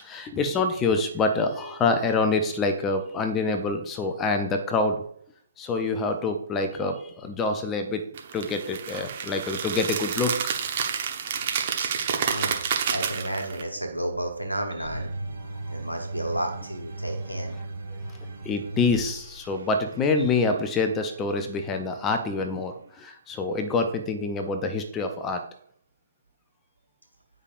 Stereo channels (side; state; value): both; normal; correlation -0.15